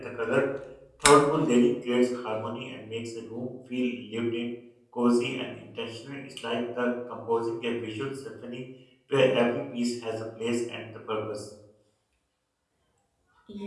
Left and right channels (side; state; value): both; identical; correlation 1.00